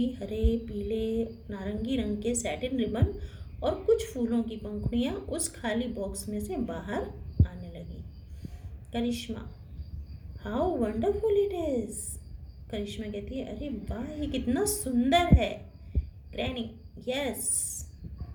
हरे, पीले, नारंगी रंग के सैटिन रिबन और कुछ फूलों की पंखुड़ियाँ उस खाली बॉक्स में से बाहर आने लगी. Karishma, how wonderful it is. Karishma कहती है अरे वाह, ये कितना सुंदर है. Granny, yes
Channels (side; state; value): both; identical; correlation 1.00